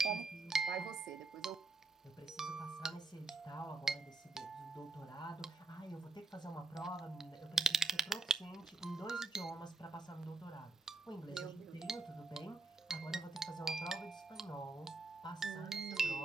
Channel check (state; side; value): quieter; left; 3.6 dB